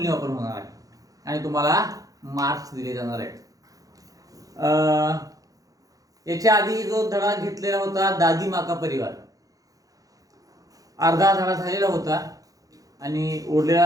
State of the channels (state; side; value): late; left; 0.17 ms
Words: होणार आहे आणि तुम्हाला मार्क्स दिले जाणार आहेत. याच्या आधी जो धडा घेतलेला होता दादी माँ का परिवार, अर्धा धडा झालेला होता आणि उरलेला